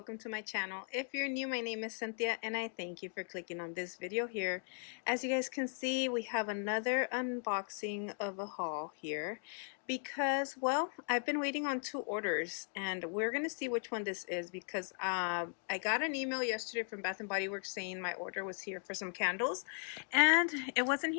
to my channel. If you're new, my name is Cynthia and I thank you for clicking on this video here. As you guys can see, we have another unboxing of a haul here because, well, I've been waiting on two orders and we're going to see which one this is because I got an email yesterday from Bath & Body Works saying my order was here for some candles and it wasn't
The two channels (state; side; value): silent; right; 53 dB below the other